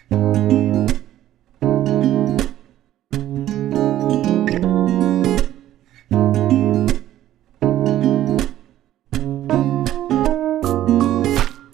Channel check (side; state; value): left; quieter; 13.0 dB